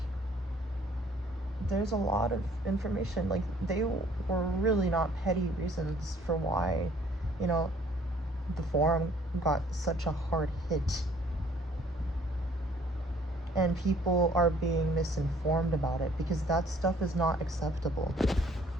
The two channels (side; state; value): both; normal; correlation 0.58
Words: there's a lot of information. Like, they were really not petty reasons for why, you know, the forum got such a hard hit. And people are being misinformed about it, because that stuff is not acceptable.